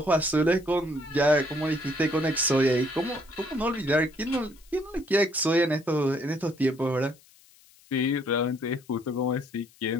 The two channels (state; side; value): noise; left; hiss, 28 dB below the sound